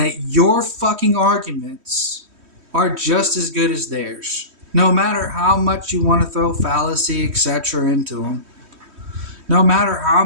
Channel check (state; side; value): late; left; 3.1 ms